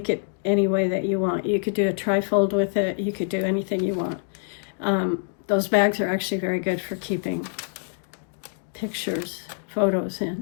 it any way that you want. You could do a trifold with it. You could do anything you want. Those bags are actually very good for keeping pictures, photos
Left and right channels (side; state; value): right; silent; digital silence